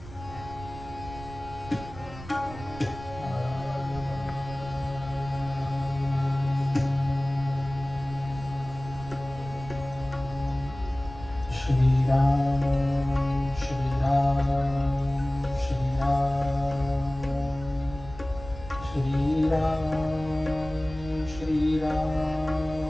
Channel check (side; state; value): right; noise; rumble, 14 dB below the sound